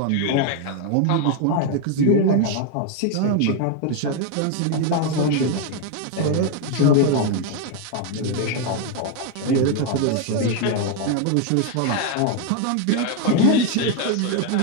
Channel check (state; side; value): different; both; correlation 0.01